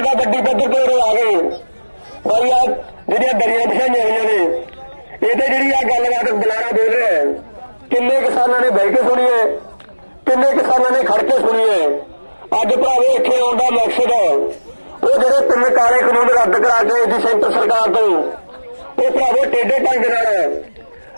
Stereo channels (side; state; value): both; inverted; correlation -1.00